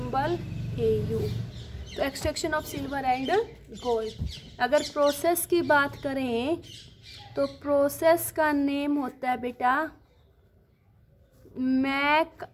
Au। तो extraction of silver and gold, अगर प्रोसेस की बात करें तो प्रोसेस का नेम होता है बेटा मैक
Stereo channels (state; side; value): identical; both; correlation 1.00